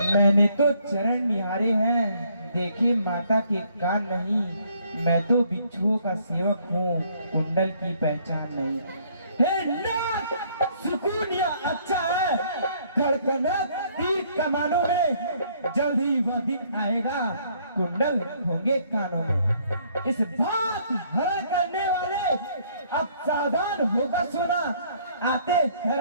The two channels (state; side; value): inverted; both; correlation -0.65